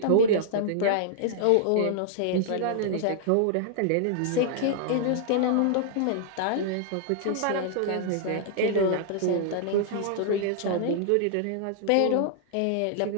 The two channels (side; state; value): both; different; correlation -0.01